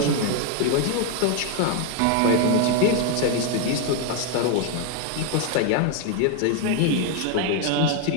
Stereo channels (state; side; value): different; both; correlation 0.01